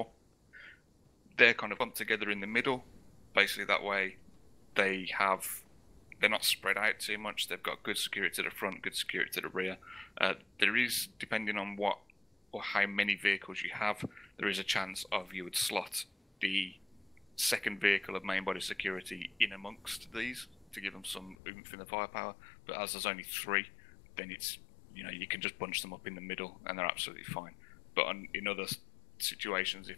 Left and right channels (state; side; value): drops out; right; at 21.4 s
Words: They're kind of bumped together in the middle. Basically that way they're not spread out too much. They've got good security to the front, good security to the rear. There is, depending on what or how many vehicles you have, there is a chance of you would slot the second vehicle of main body security in amongst these to give them some oomph in the firepower. But as there's only 3, then it's, you can just bunch them up in the middle and they're absolutely fine. But in other situations,